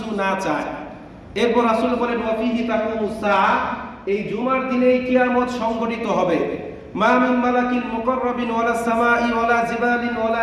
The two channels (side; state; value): both; identical; correlation 1.00